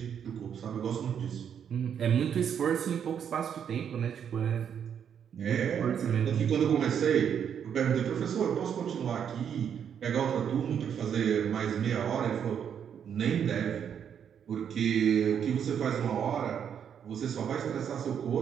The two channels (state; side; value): quieter; left; 8.2 dB